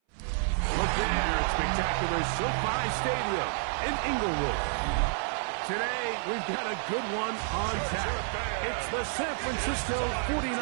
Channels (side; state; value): left; silent; 58 dB below the other